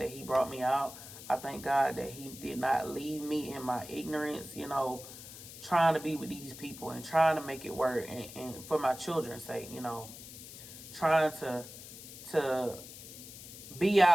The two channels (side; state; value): left; noise; hiss, 14 dB below the sound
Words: he brought me out. I thank God that he did not leave me in my ignorance, you know, trying to be with these people and trying to make it work, and for my children's sake, you know, trying to be